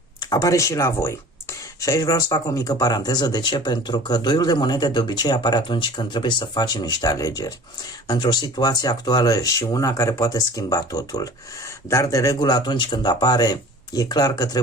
Apare și la voi. Și aici vreau să fac o mică paranteză. De ce? Pentru că doiul de monede de obicei apare atunci când trebuie să facem niște alegeri. Într-o situație actuală și una care poate schimba totul. Dar de regulă atunci când apare, e clar că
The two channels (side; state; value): both; normal; correlation 0.43